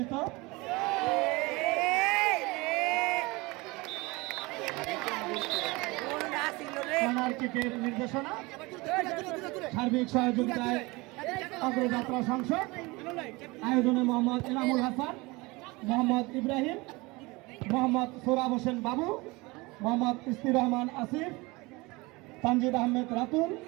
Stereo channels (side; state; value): left; quieter; 23.9 dB